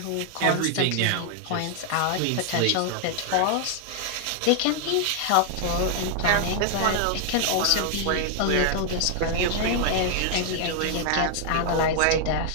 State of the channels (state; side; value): different; both; correlation 0.00